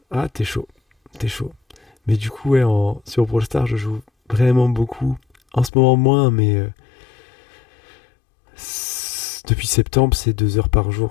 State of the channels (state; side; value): drops out; right; at 5.7 s